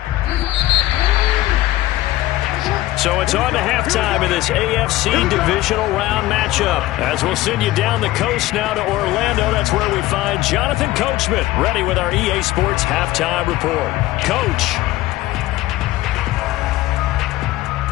So it's on to halftime in this AFC Divisional Round matchup. As we'll send you down the coast now to Orlando. That's where we find Jonathan Coachman ready with our EA Sports Halftime Report. Coach.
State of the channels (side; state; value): right; quieter; 16.7 dB